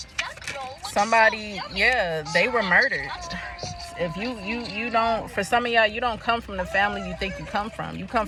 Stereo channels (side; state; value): both; identical; correlation 1.00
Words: Somebody, yeah, they were murdered. If you don't, for some of y'all, you don't come from the family you think you come from. You come